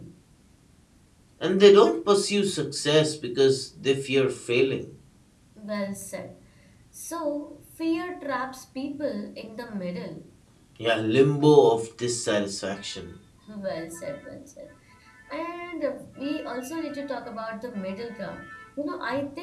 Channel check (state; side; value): identical; both; correlation 1.00